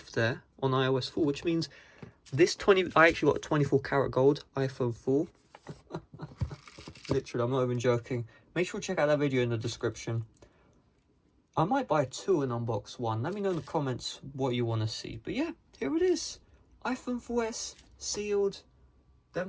there on iOS 4, which means this I actually got a 24 karat gold iPhone 4. Literally, I'm not even joking. Make sure to check out that video in the description. I might buy two and unbox one. Let me know in the comments what you want to see. But yeah, here it is. iPhone 4S, sealed,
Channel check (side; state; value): both; identical; correlation 1.00